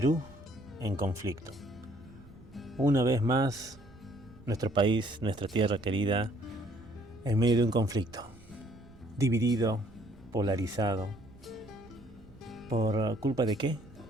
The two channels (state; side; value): noise; right; rumble, 22 dB below the sound